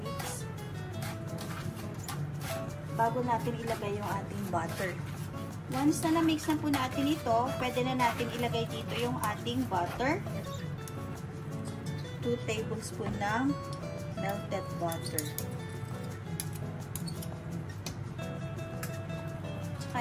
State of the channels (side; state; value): both; identical; correlation 1.00